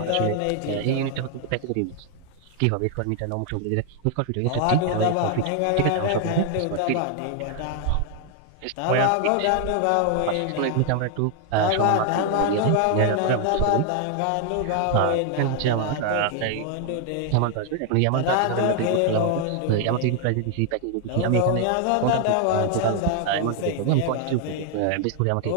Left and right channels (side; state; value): both; different; correlation 0.00